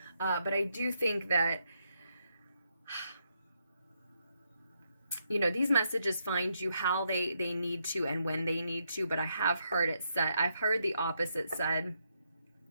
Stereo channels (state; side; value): inverted; both; correlation -0.78